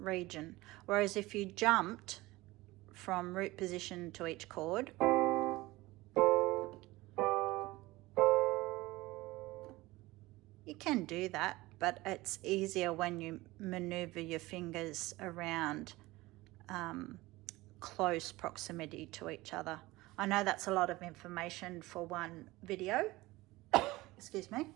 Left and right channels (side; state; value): left; quieter; 19.8 dB